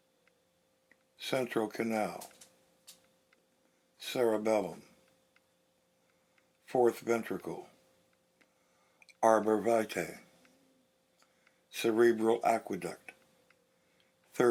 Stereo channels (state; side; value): identical; both; correlation 1.00